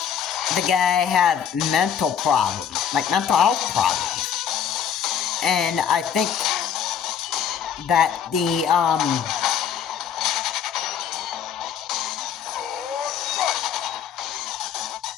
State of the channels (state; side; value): quieter; right; 8.4 dB